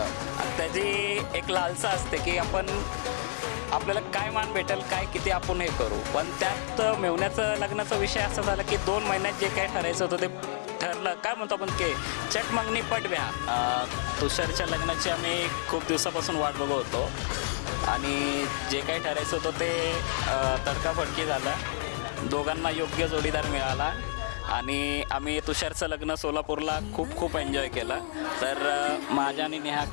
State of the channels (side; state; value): right; silent; 58 dB below the other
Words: त्याची एक लालसा असते की आपल्याला काय मान भेटेल काय किती आपण हे करू. पण त्यात मेवण्याचं लग्नाचा विषय असा झाला की 2 महिन्यात जे काय ठरायचं होतं ते ठरलं. काय म्हणतो आपण की चट मागणी पटव्या. तुषारच्या लग्नाची आम्ही खूप दिवसापासून वाट बघत होतो आणि जे काही ठरायचं होतं ते तडकाफडकी झालं. दोघांना योग्य जोडीदार मिळाला आणि आम्ही तुषारचं लग्न सोलापूरला खूप खूप एन्जॉय केलं. तर माझ्या आणि